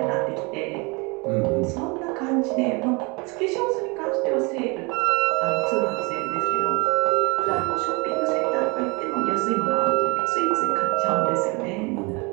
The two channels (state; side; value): quieter; left; 28.9 dB